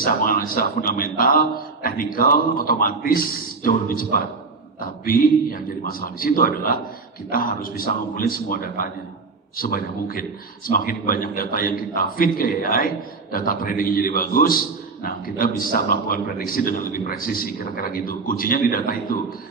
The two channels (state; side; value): quieter; left; 4.3 dB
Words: menganalisa fundamental, teknikal, otomatis jauh lebih cepat. Tapi yang jadi masalah di situ adalah kita harus bisa ngumpulin semua datanya sebanyak mungkin. Semakin banyak data yang kita feed ke AI, data tradingnya jadi bagus. Nah, kita bisa melakukan prediksi dengan lebih presisi, kira-kira gitu. Kuncinya di data itu.